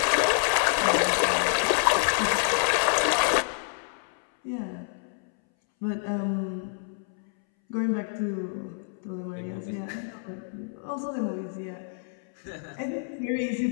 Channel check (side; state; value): right; silent; 60 dB below the other